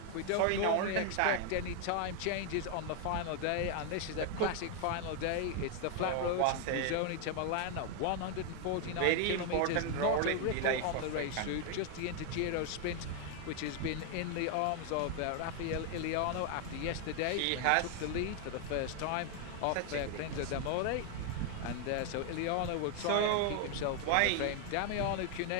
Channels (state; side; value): different; both; correlation 0.00